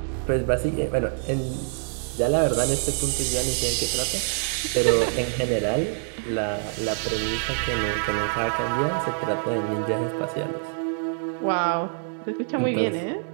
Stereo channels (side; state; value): left; silent; digital silence